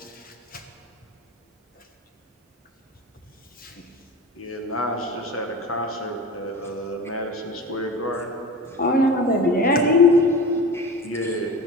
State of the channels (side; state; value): both; normal; correlation 0.33